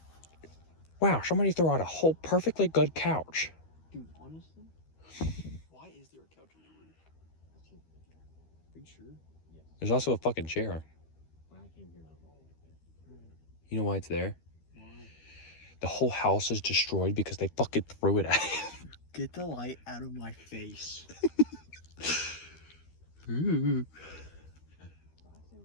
Wow, somebody threw out a whole perfectly good couch. Dude, honestly, why is there a couch on the roof? Are you sure? Yes. There's also a fucking chair. When I came here, I was all like that. You know why it's there? Why? The whole house is destroyed because they fucking threw it at it. Get the light out of my face. Ooh.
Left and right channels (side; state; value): right; late; 13 ms